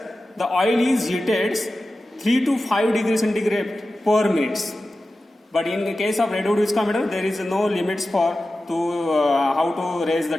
the oil is heated 3 to 5 degrees centigrade per minute. But in the case of Redwood viscometer, there is no limits for how to raise the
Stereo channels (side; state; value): both; normal; correlation 0.94